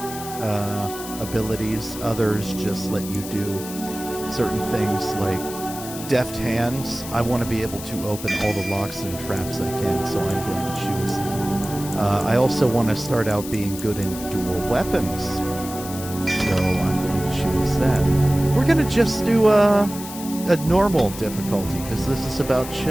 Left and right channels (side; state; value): left; noise; hiss, 12 dB below the sound